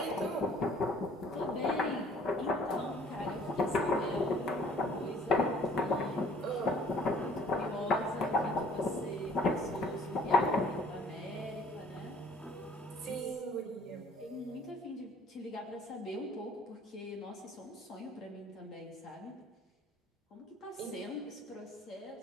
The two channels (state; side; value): normal; both; correlation 0.55